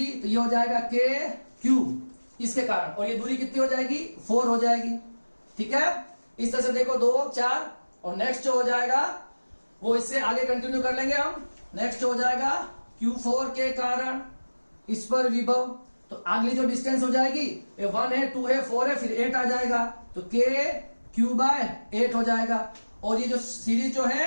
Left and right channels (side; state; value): both; inverted; correlation -1.00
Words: तो ये हो जाएगा K Q इसके कारण, और ये दूरी कितनी हो जाएगी 4 हो जाएगी, ठीक है। इस तरह से देखो 2 4, और नेक्स्ट जो हो जाएगा वो इससे आगे कंटिन्यू कर लेंगे हम। नेक्स्ट हो जाएगा Q4 के कारण इस पर विभव, तो अगली जो डिस्टेंस हो जाएगी 1 है 2 है 4 है, फिर 8 आ जाएगा, तो K Q बाय 8 हो जाएगा। और ये जो सीरीज जो है